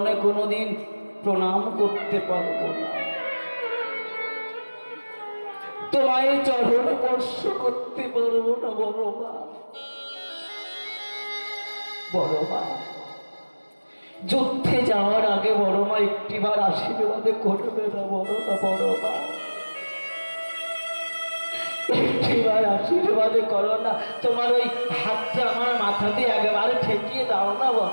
কোনোদিন প্রণাম করতে পারবো না, তোমায় চরণ স্পর্শ করতে পারবো না বড় মা। বড় মা, যুদ্ধে যাওয়ার আগে বড় মা একটিবার আশীর্বাদ করবে না বড় না? বড় মা, একটিবার আশীর্বাদ করো না, তোমার ওই হাতটা আমার মাথাতে একেবারে ঠেকিয়ে দাও না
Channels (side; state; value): both; inverted; correlation -1.00